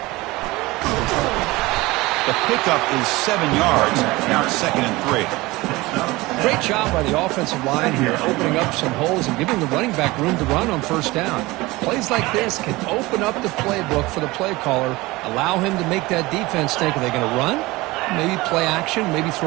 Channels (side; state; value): left; quieter; 21.0 dB